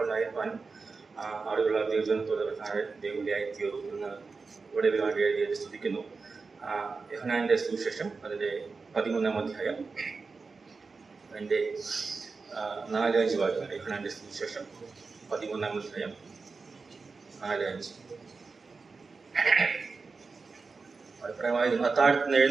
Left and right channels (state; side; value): quieter; left; 4.4 dB